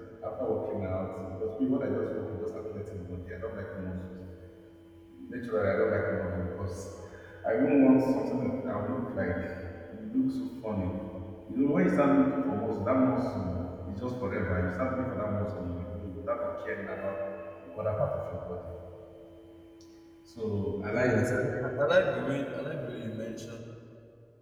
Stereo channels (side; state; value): both; identical; correlation 1.00